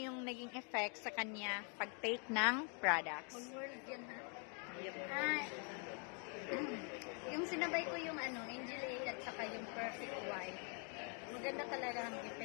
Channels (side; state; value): right; quieter; 39.3 dB